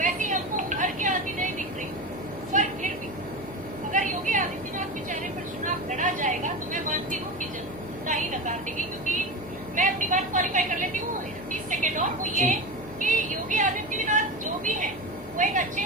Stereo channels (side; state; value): left; noise; hum, 20 dB below the sound